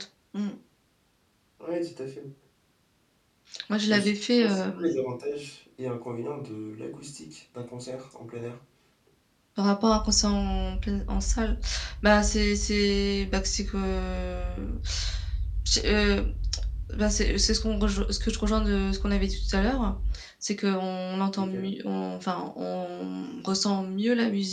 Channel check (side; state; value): both; identical; correlation 1.00